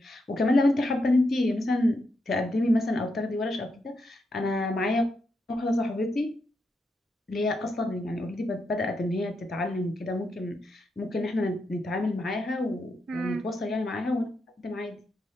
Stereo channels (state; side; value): normal; both; correlation 0.83